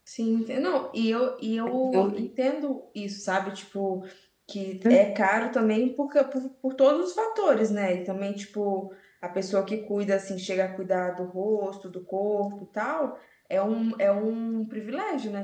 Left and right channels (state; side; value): identical; both; correlation 1.00